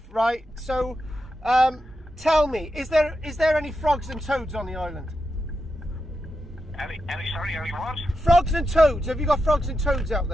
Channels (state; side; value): normal; both; correlation 0.88